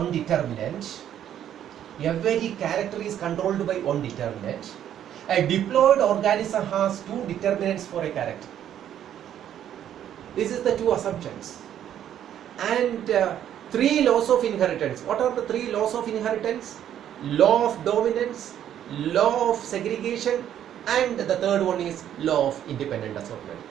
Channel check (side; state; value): left; quieter; 10.5 dB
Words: determinant. Every character is controlled by one determinant. A diploid organism has 2 determinants for a character. This is the 2 assumptions. And 3 laws of inheritance. What are the 3 laws of inheritance? law of dominance, law of segregation, and the third one is law of independent assortment.